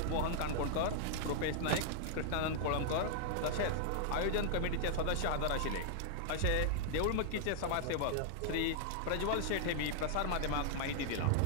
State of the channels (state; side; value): different; both; correlation -0.01